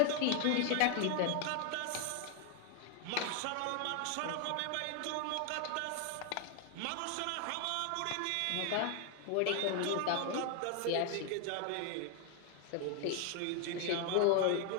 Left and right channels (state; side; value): different; both; correlation 0.01